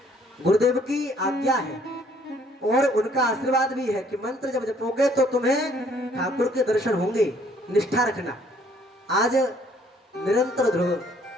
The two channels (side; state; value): both; normal; correlation 0.62